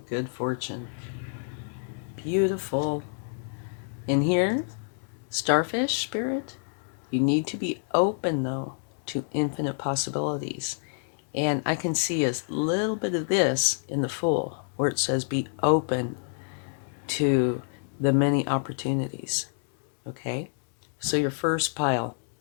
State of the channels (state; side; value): silent; right; digital silence